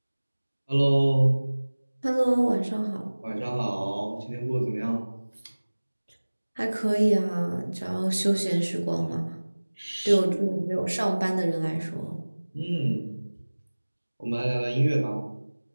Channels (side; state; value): both; inverted; correlation -1.00